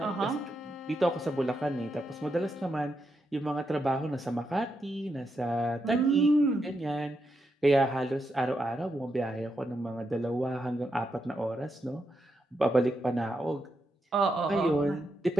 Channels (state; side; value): normal; both; correlation 0.83